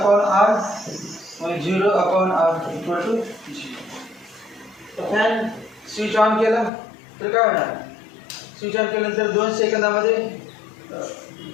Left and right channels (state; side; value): drops out; right; at 6.7 s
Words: r, मग zero upon R equal to zero. तर फॅन स्विच ऑन केला तर काय होणार, स्विच ऑन केल्यानंतर 2 सेकंदामध्ये